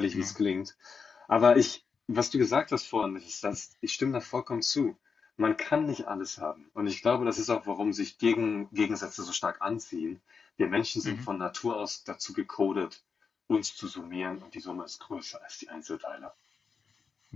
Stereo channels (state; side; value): quieter; right; 5.6 dB